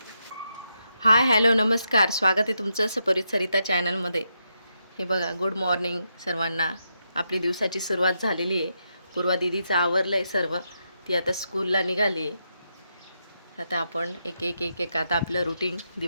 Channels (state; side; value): inverted; both; correlation -0.83